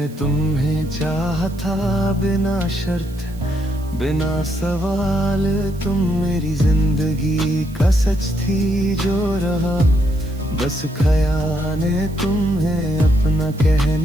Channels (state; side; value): noise; right; hiss, 24 dB below the sound